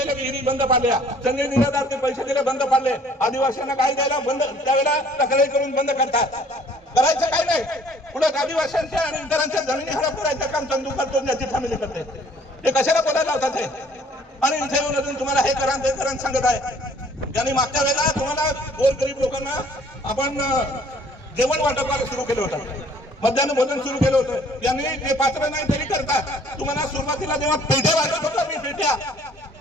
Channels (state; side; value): normal; both; correlation 0.57